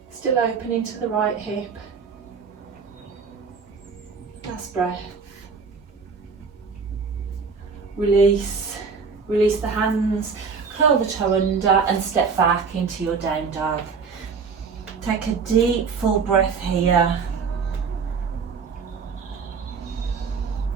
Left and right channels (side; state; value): left; quieter; 5.4 dB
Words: Still opening to the right hip. Last breath. Release the hands, curl the toe under and step back into your down dog. Take a deep full breath here.